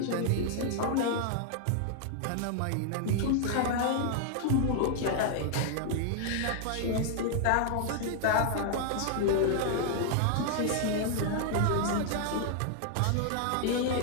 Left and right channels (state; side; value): different; both; correlation 0.00